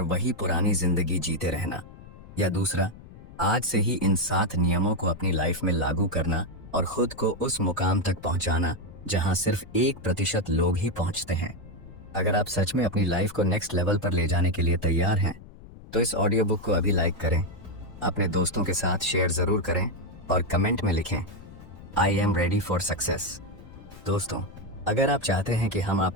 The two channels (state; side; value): noise; left; rumble, 18 dB below the sound